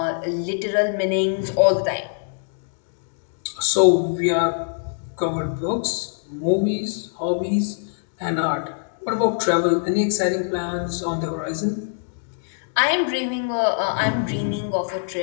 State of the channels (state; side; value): silent; right; digital silence